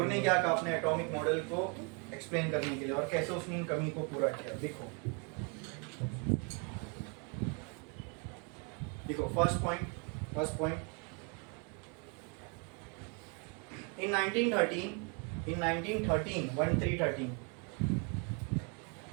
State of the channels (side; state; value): left; quieter; 35.0 dB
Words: ने क्या कहा अपने एटॉमिक मॉडल को एक्सप्लेन करने के लिए, और कैसे उसने इन कमी को पूरा किया। देखो first point in 1913